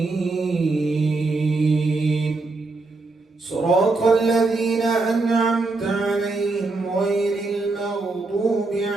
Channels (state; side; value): quieter; left; 3.5 dB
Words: صراط الذين أنعمت عليهم غير المغضوب